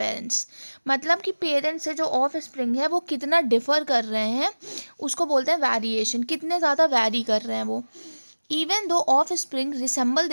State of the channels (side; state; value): both; inverted; correlation -1.00